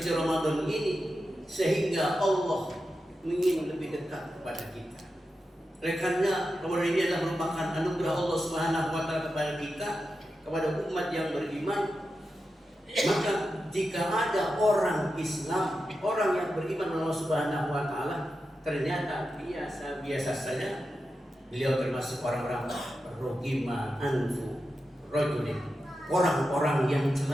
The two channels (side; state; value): both; normal; correlation 0.90